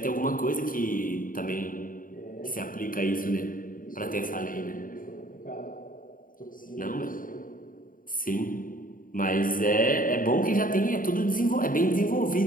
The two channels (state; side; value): late; right; 0.40 ms